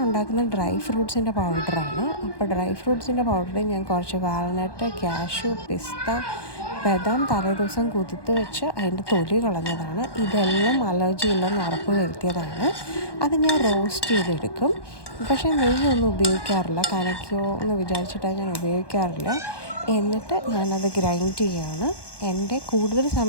ഉണ്ടാക്കുന്ന ഡ്രൈ ഫ്രൂട്ട്സിൻ്റെ പൗഡറാണ്. അപ്പോൾ ഡ്രൈ ഫ്രൂട്ട്സിൻ്റെ പൗഡറിൽ ഞാൻ കുറച്ച് വാൽനട്ട്, ക്യാഷ്യൂ, പിസ്ത, ബദാം തലേദിവസം കുതിർത്ത് വെച്ച് അതിൻ്റെ തൊലി കളഞ്ഞതാണ്. ഇതെല്ലാം അലർജി ഇല്ലെന്ന് ഉറപ്പ് വരുത്തിയതാണ്. അത് ഞാൻ റോസ്റ്റ് ചെയ്തെടുക്കും. പക്ഷേ നെയ്യൊന്നും ഉപയോഗിക്കാറില്ല, കനയ്ക്കോ എന്ന് വിചാരിച്ചിട്ടാണ് ഞാൻ ഉപയോഗിക്കാറില്ല. എന്നിട്ട് ഞാനത് ഗ്രൈൻഡ് ചെയ്യുകയാണ്. എൻ്റെ കൂടുതൽ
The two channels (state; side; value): late; right; 1.1 ms